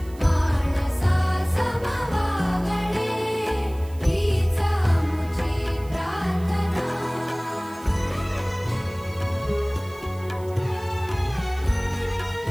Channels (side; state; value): right; noise; hiss, 24 dB below the sound